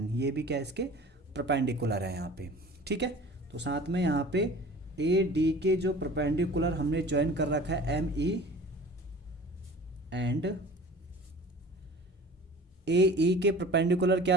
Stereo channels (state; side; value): normal; both; correlation 0.42